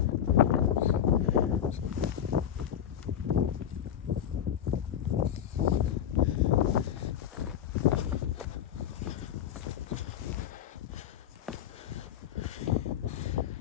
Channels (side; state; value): right; quieter; 9.7 dB